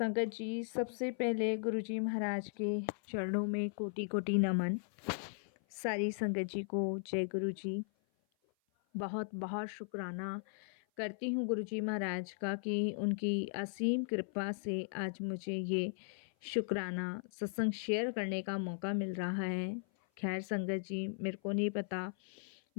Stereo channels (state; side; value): silent; right; 53 dB below the other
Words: जी सबसे पहले गुरुजी महाराज के चरणों में कोटि कोटि नमन। सारी संगत जी को जय गुरु जी। बहुत बहुत शुक्राना करती हूँ गुरुजी महाराज का कि उनकी असीम कृपा से आज मुझे ये शुक्राना सत्संग शेयर करने का मौका मिल रहा है। खैर संगत जी, मेरे को नहीं पता